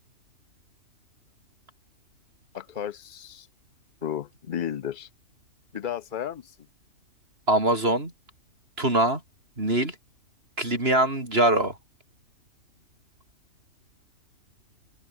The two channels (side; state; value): left; late; 2.9 ms